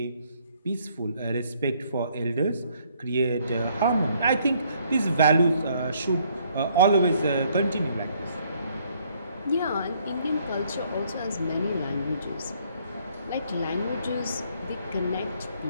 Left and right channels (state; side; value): inverted; both; correlation -0.66